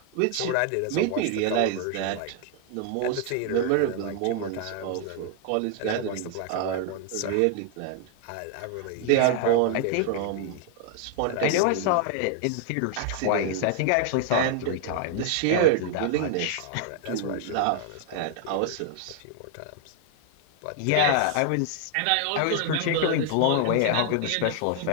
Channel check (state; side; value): different; both; correlation 0.00